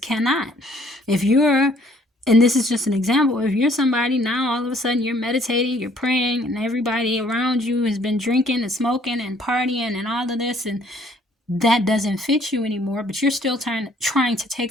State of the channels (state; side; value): normal; both; correlation 0.61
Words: If you're And this is just an example. If you're somebody now, all of a sudden you're meditating, you're praying, and everybody around you has been drinking and smoking and partying and all of this, and that doesn't fit you anymore, but you're still trying to take